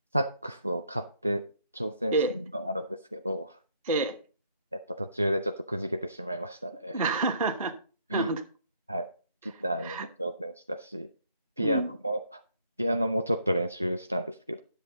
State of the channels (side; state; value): both; inverted; correlation -0.66